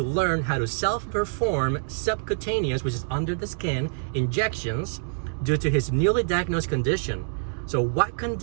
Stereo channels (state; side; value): silent; left; digital silence